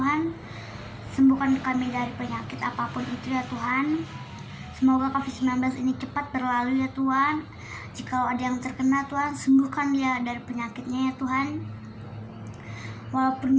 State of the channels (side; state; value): both; identical; correlation 1.00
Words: Sembuhkan kami dari penyakit apapun itu ya Tuhan. Semoga COVID-19 ini cepat berlalu ya Tuhan. Jika ada yang terkena Tuhan, sembuhkan dia dari penyakitnya ya Tuhan. Walaupun